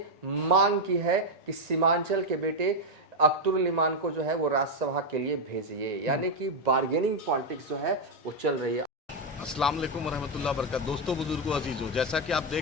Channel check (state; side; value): normal; both; correlation 0.02